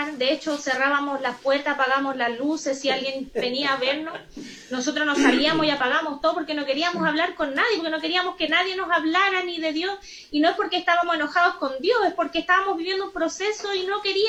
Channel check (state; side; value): identical; both; correlation 1.00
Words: De hecho, cerrábamos las puertas, apagamos las luces, si alguien venía a vernos, nosotros nos salíamos y apagamos todo porque no queríamos hablar con nadie, porque no queríamos que nadie nos hablara ni de Dios, y no es porque estábamos enojados con Dios, es porque estábamos viviendo un proceso y no